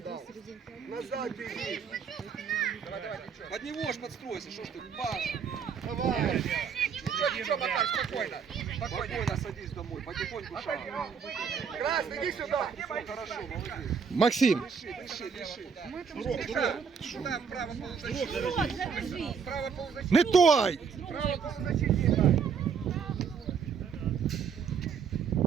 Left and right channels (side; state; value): left; quieter; 6.4 dB